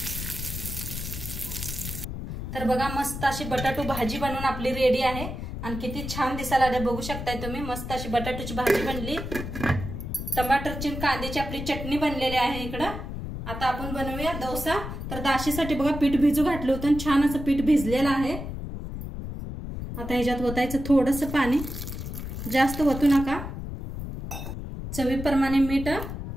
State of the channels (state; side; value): noise; left; rumble, 7 dB below the sound